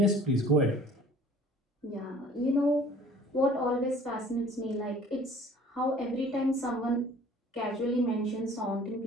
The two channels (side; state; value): both; normal; correlation 0.50